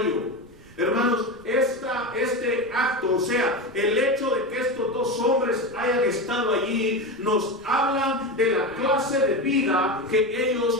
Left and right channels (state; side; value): noise; right; rumble, 25 dB below the sound